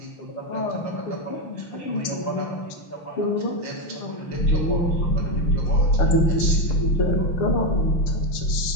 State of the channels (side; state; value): right; late; 6.7 ms